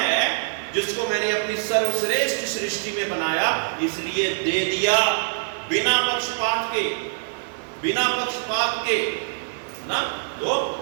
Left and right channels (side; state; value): left; silent; digital silence